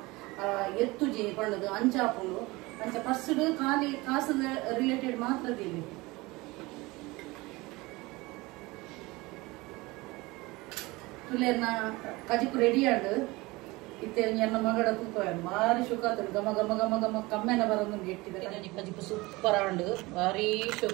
ಎತ್ತುಜಿ ಪಂಡದು ಅಂಚಾಪುಂಡು ಅಂಚ ಫಸ್ಟ್ ಖಾಲಿ ಕಾಸದ ರಿಲೇಟೆಡ್ ಮಾತ್ರ ದೀಲಿ ತುಲೇನ ಕಜಿಪು ರೆಡಿ ಆಂಡ್ ಇತ್ತೆ ಎನ್ನ ಮಗಡ ತೂಕ ಭಾರಿ ಶೋಕ ಆತನು ಗಮ ಗಮ ಗಮ ಗಮ ಕಮ್ಮೆನ ಬರೋದು ಇಟ್ಟಿದ್ದಾರೆ ಕಜಿಪು ಸೂಪರ್ ಆಂಡ್ ಭಾರಿ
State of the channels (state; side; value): quieter; left; 22.3 dB